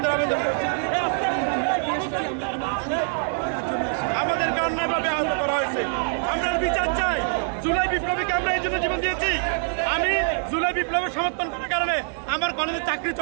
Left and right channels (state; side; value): silent; left; digital silence